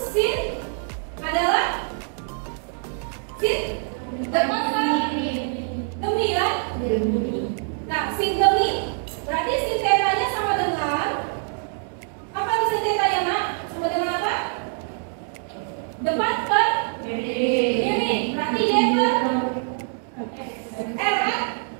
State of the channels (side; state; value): left; silent; 55 dB below the other